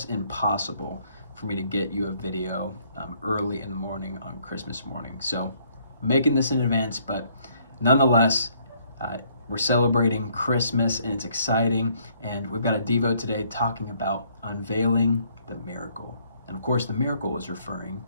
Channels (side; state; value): both; inverted; correlation -0.66